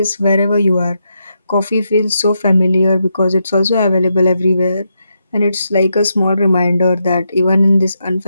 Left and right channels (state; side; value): inverted; both; correlation -0.83